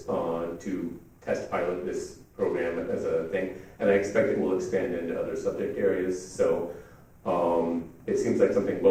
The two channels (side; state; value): both; identical; correlation 1.00